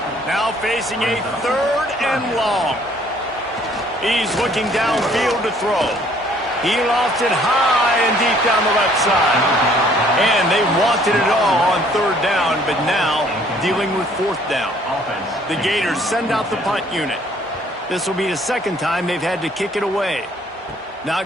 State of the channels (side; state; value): both; normal; correlation 0.60